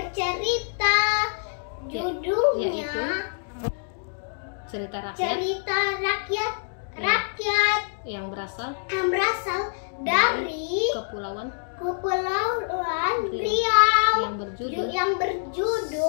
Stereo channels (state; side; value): silent; right; digital silence